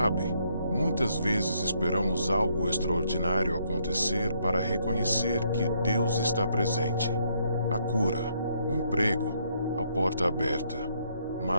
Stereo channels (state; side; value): inverted; both; correlation -0.72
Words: muitas vezes esperamos algo extraordinário acontecer para reconhecer que Deus está presente. A cura, o emprego, a porta aberta.